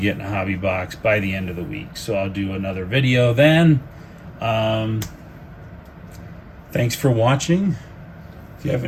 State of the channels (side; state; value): both; identical; correlation 1.00